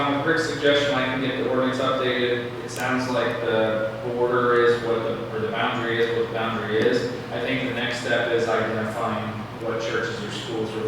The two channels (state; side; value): identical; both; correlation 1.00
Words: with Rick's suggestion, I can get the ordinance updated. It sounds like the border is or the boundary is what the boundary is. I think the next step is identifying what churches or schools are